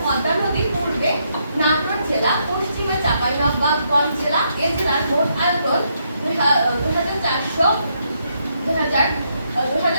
পদ্মা নদীর পূর্বে নাটোর জেলা, পশ্চিমে চাঁপাইনবাবগঞ্জ জেলা। এ জেলার মোট আয়তন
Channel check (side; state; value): both; inverted; correlation -0.77